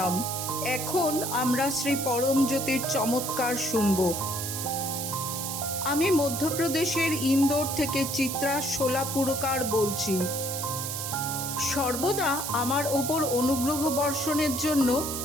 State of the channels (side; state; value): right; noise; hiss, 4 dB below the sound